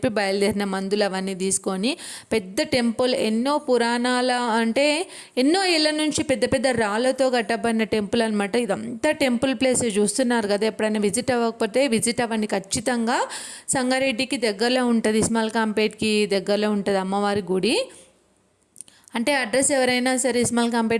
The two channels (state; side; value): identical; both; correlation 1.00